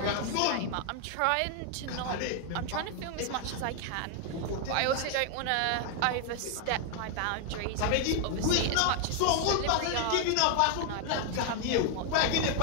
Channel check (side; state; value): both; different; correlation 0.00